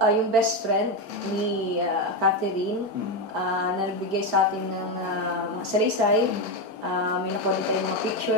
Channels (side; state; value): both; normal; correlation 0.11